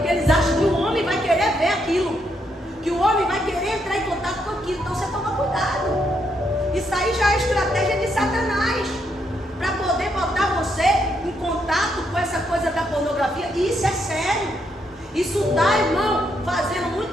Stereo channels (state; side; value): normal; both; correlation 0.77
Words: eles acham que o homem vai querer ver aquilo. Que o homem vai querer entrar em contato com aquilo. Então você toma cuidado. Isso aí já é estratégia de Satanás. Para poder botar você em contato com essa coisa da pornografia. E isso é sério. Isso está, irmão, fazendo